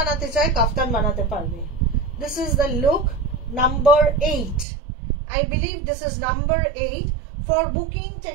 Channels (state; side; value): drops out; left; at 4.7 s